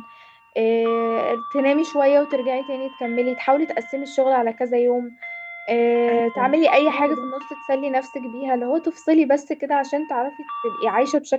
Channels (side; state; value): both; identical; correlation 1.00